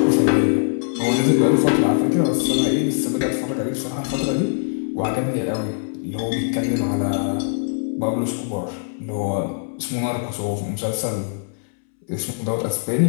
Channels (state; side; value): silent; right; 64 dB below the other